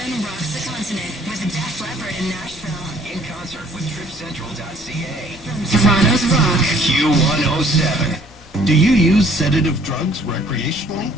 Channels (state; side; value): normal; both; correlation 0.59